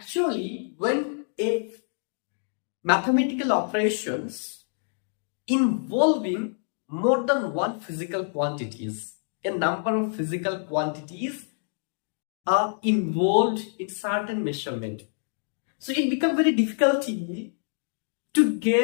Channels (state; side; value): silent; right; digital silence